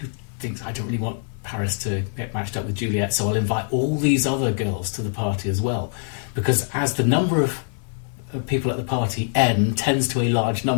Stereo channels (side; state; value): right; silent; digital silence